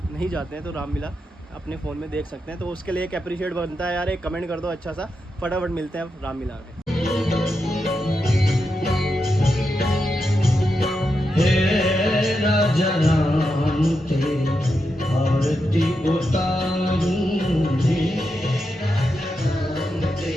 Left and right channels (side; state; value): both; normal; correlation 0.86